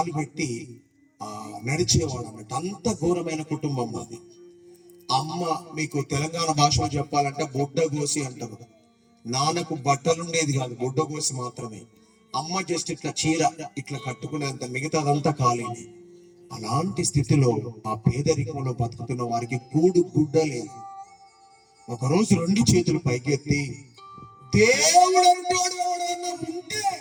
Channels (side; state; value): both; identical; correlation 1.00